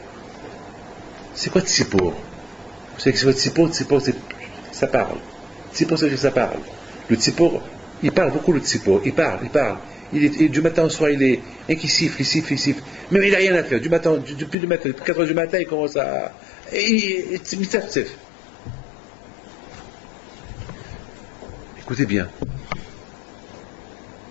c'est quoi Tzipor? Vous savez que c'est votre Tzipor, ça parle. Tzipor, c'est que ça parle. Le Tzipor, il parle beaucoup, le Tzipor. Il parle. Du matin au soir, il est qui siffle. Mais il n'a rien à faire. Depuis le matin, depuis 4 heures du matin, il commence à. Écoutez bien.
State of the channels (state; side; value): drops out; right; at 14.6 s